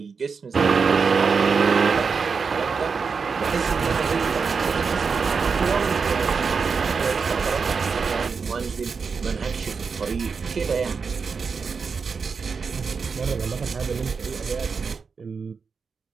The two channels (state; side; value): quieter; left; 5.3 dB